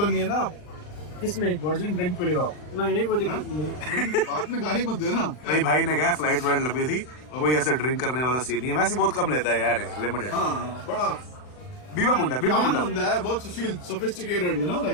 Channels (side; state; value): right; late; 39 ms